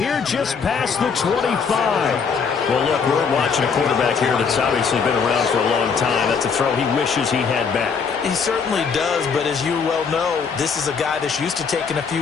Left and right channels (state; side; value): quieter; right; 5.9 dB